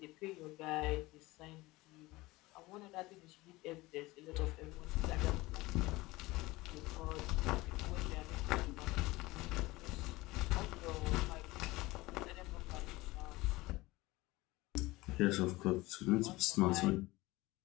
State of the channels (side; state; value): right; quieter; 20.4 dB